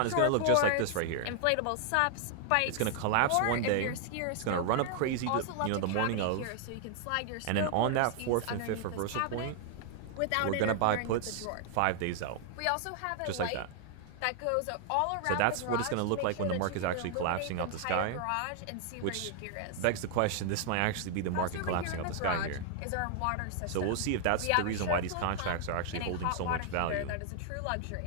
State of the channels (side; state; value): both; different; correlation 0.00